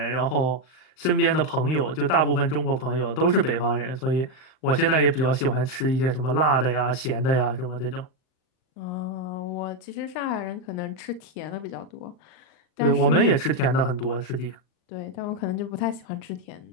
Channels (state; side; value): late; right; 38 ms